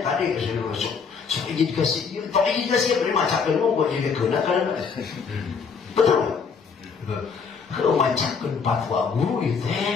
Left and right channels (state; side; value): quieter; right; 5.8 dB